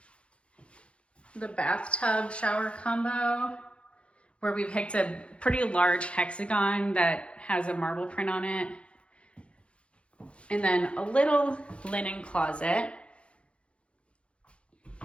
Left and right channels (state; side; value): late; right; 0.059 ms